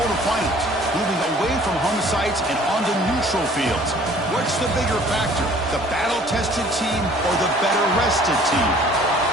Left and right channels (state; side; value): normal; both; correlation 0.53